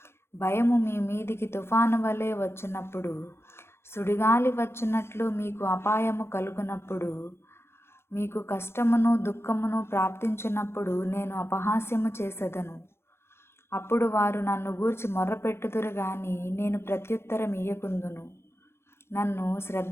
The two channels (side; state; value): right; late; 0.12 ms